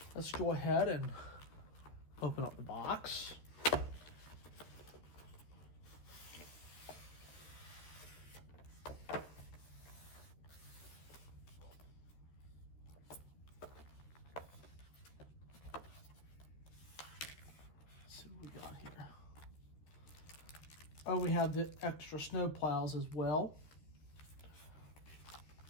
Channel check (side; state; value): right; late; 13 ms